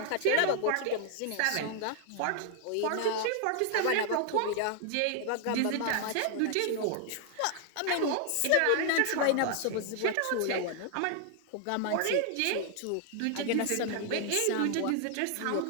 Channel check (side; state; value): both; different; correlation 0.00